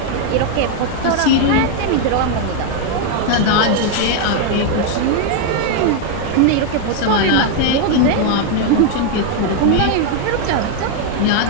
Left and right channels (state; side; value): different; both; correlation 0.00